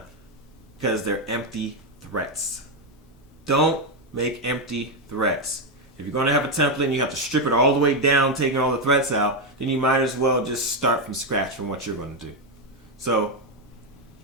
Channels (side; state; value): both; normal; correlation 0.05